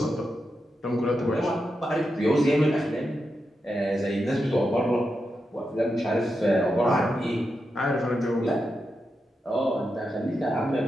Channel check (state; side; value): normal; both; correlation 0.87